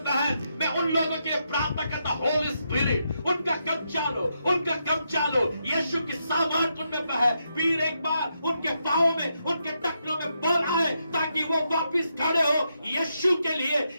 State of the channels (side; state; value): both; inverted; correlation -0.82